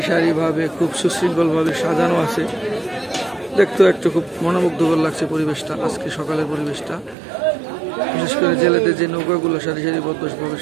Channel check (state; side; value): drops out; left; at 7.2 s